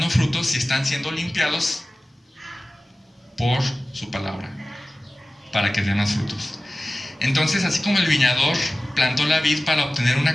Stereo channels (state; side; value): normal; both; correlation 0.96